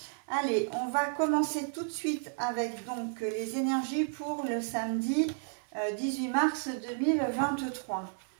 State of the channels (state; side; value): silent; left; 56 dB below the other